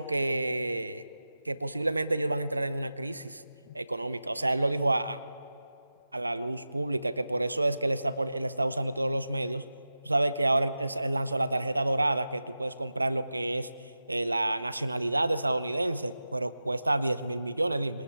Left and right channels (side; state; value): both; inverted; correlation -0.93